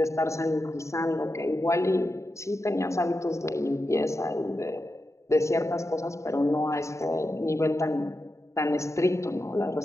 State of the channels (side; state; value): right; late; 0.14 ms